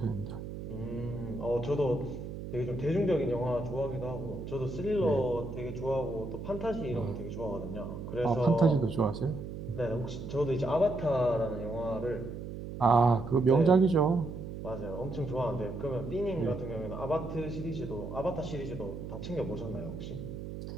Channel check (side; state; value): right; noise; hum, 8 dB below the sound